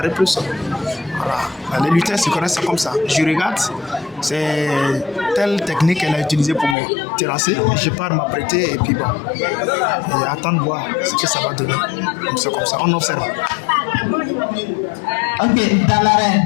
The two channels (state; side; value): drops out; right; at 6.8 s